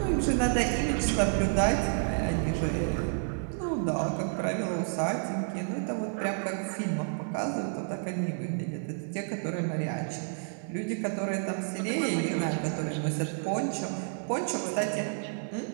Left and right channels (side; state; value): left; silent; 58 dB below the other